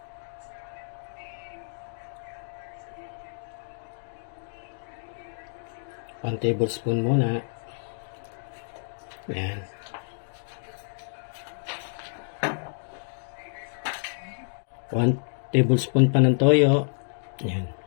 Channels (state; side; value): silent; right; digital silence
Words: 1 tablespoon muna. Yan. One tablespoon pa ng toyo. Yan.